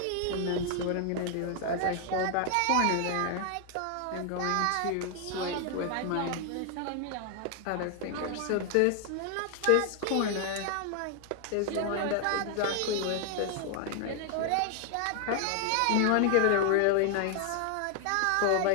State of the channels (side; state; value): both; different; correlation 0.00